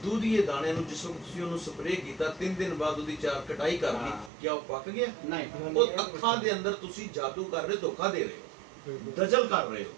ਦੁਧੀਏ ਦਾਣੇ ਨੂੰ ਜਿਸ ਵਕਤ ਤੁਸੀਂ ਉਹਨੂੰ ਸਪਰੇਅ ਕੀਤਾ 3 ਦਿਨ ਬਾਅਦ ਉਹਦੀ ਚਾਰ ਕਟਾਈ ਕਰ ਲਈ ਕਿਆ ਉਹ ਪੱਕ ਗਿਆ ਨਹੀਂ ਉਹ ਅੱਖਾਂ ਦੇ ਅੰਦਰ ਤੁਸੀਂ ਜਾਦੂ ਕਰ ਰਹੇ ਧੋਖਾ ਦੇ ਰਹੇ ਹੋ ਦਜਲ ਕਰ ਰਹੇ ਹੋ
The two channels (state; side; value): drops out; left; at 4.3 s